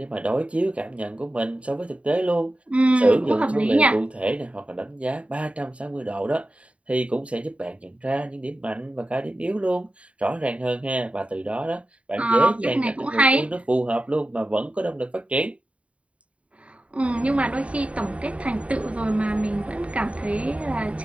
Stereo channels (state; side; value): late; left; 0.064 ms